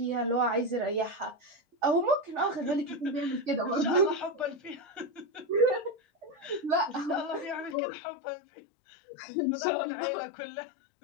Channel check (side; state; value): right; drops out; at 7.8 s